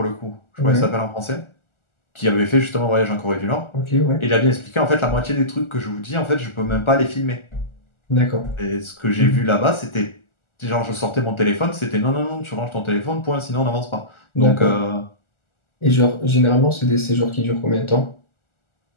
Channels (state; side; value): late; right; 1.4 ms